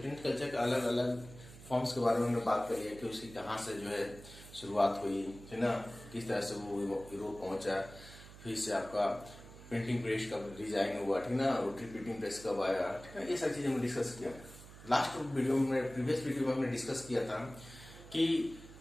culture के अलग अलग फॉर्म्स के बारे में हमने बात करी है कि उसकी कहाँ से जो है शुरुआत हुई, है ना, किस तरह से वो यूरोप पहुंचा, फिर से आपका प्रिंटिंग प्रेस का डिजाइन हुआ, ठीक ना, रोटरी प्रिंटिंग प्रेस कब आया, ठीक है, ये सारी चीजें हमने डिस्कस किया। लास्ट वीडियो में, प्रीवियस वीडियो में हमने डिस्कस किया था कि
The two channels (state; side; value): noise; right; hum, 17 dB below the sound